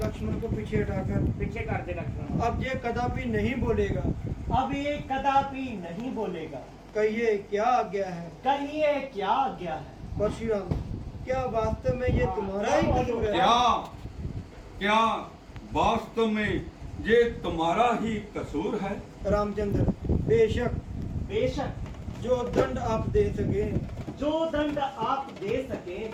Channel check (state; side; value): identical; both; correlation 1.00